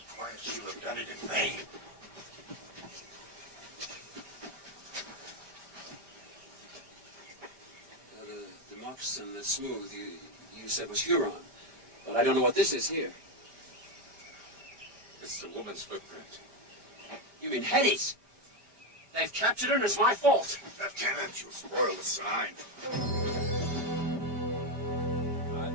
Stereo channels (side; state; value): left; late; 5.1 ms